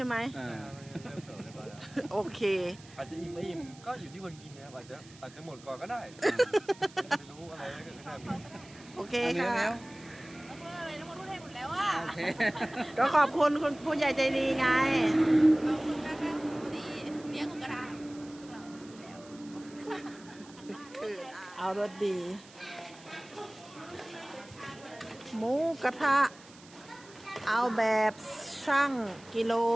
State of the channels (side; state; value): right; noise; hiss, 22 dB below the sound